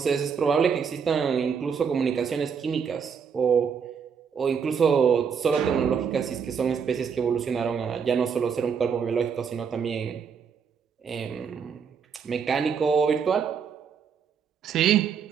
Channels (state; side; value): quieter; left; 6.6 dB